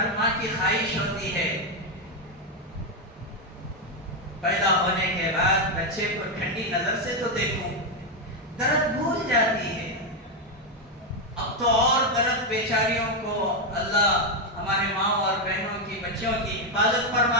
ماں کی خواہش ہوتی ہے پیدا ہونے کے بعد بچے کو ٹھنڈی نظر سے تو دیکھوں، درد بھول جاتی ہے۔ اب تو اور درد بیچاریوں کو اللہ ہمارے ماں اور بہنوں کی بچوں کی حفاظت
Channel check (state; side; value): normal; both; correlation 0.05